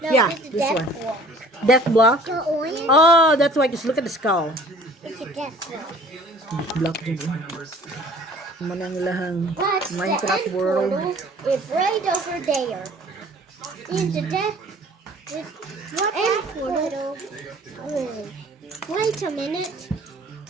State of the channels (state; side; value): normal; both; correlation 0.50